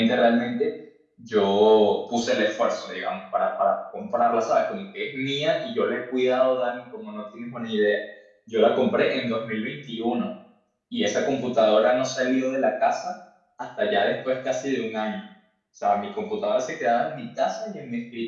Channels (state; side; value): identical; both; correlation 1.00